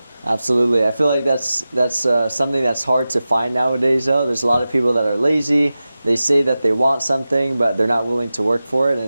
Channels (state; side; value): inverted; both; correlation -0.94